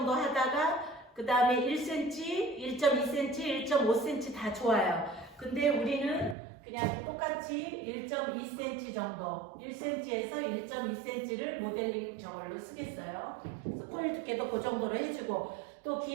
하다가 그 다음에 1cm, 1.2cm, 1.5cm 다 좋아요. 근데 우리는 그냥 똑같이 1.2cm 정도, 1cm에서 1.2cm를 모델링 저걸로 쓰겠어요. 그래서 코일 두께도 그 정도로 해주고, 또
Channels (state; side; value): drops out; left; at 6.4 s